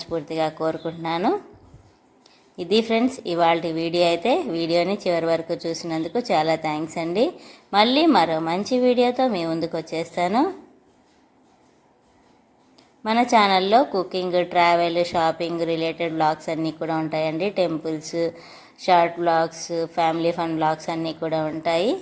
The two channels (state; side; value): identical; both; correlation 1.00